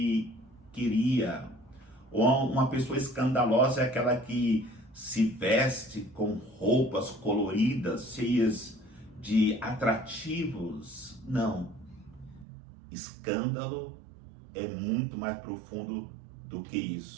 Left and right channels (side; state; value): left; drops out; at 12.5 s